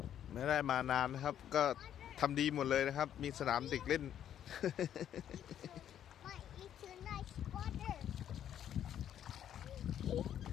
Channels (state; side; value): quieter; right; 10.2 dB